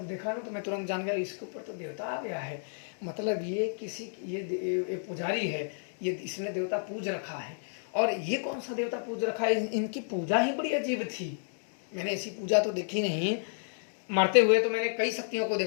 देखा ना तो मैं तुरंत जान गया इसके ऊपर तो देवता आ गया है। मतलब ये किसी ये पुजारी है, ये इसने देवता पूज रखा है। और ये कौन सा देवता पूज रखा है, इनकी पूजा ही बड़ी अजीब थी। मैंने ऐसी पूजा तो देखी नहीं। मारते हुए तो मैंने कई शक्तियों को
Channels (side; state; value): right; silent; digital silence